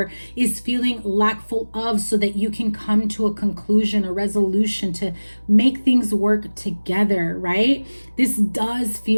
is feeling lackful of, so that you can come to a conclusion, a resolution to make things work together, right? This does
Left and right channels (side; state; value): both; inverted; correlation -1.00